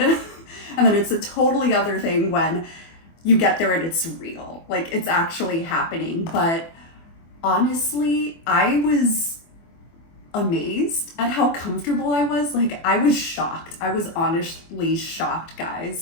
and then it's a totally other thing when you get there and it's real, like it's actually happening. But honestly, I was amazed at how comfortable I was. Like, I was shocked. I was honestly shocked,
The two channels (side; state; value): right; late; 24 ms